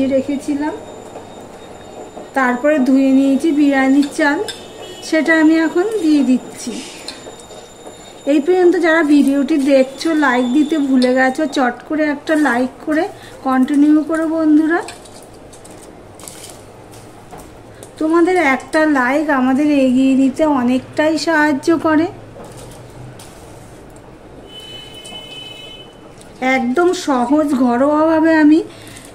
রেখেছিলাম, তারপরে ধুয়ে নিয়েছি বিরিয়ানির চাল, সেটা আমি এখন দিয়ে দিচ্ছি। এই পর্যন্ত যারা ভিডিওটি দেখছো লাইক দিতে ভুলে গেছো, চট করে একটা লাইক করে কন্টিনিউ করো বন্ধুরা। তোমাদের একটা লাইক আমাদের এগিয়ে নিতে অনেকটাই সাহায্য করে। একদম সহজ ঘরোয়াভাবে আমি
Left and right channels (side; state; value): both; identical; correlation 1.00